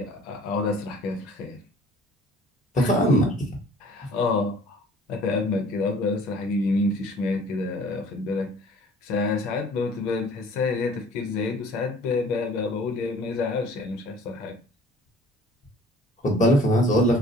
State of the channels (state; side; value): normal; both; correlation 0.51